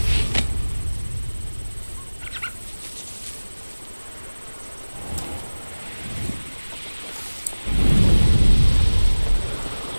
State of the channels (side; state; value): both; inverted; correlation -1.00